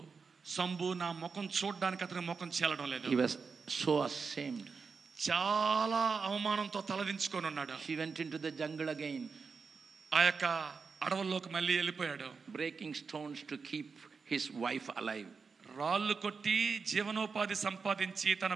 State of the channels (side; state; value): left; quieter; 5.2 dB